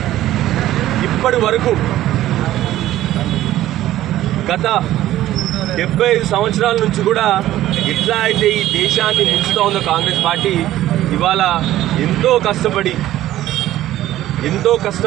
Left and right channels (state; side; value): quieter; left; 14.0 dB